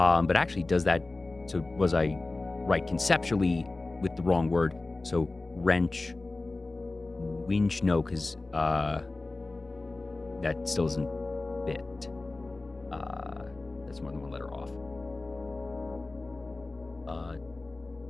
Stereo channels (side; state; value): right; quieter; 3.2 dB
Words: actually does that, so was I right conceptually with the wrong word? So wrench, winch, no, because that still isn't fit. That's more than one letter off.